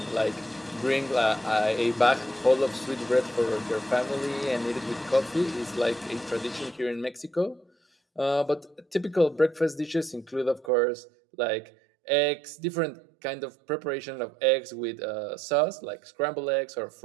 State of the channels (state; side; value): drops out; left; at 10.7 s